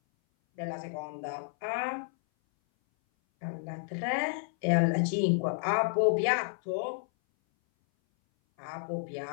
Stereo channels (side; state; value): right; silent; 57 dB below the other